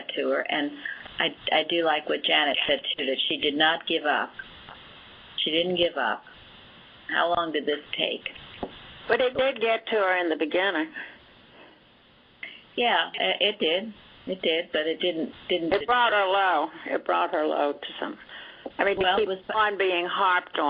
to her, and I do like what Janet said too, that she did not give up. She didn't give up. How long did this take? But it did get to her in the beginning. Yeah, it did. It did, but it didn't. It brought her low. It brought her low to some. I mean, to keep on being harped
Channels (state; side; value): identical; both; correlation 1.00